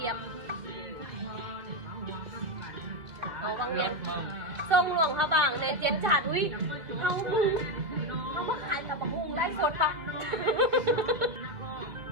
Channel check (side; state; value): left; late; 2.6 ms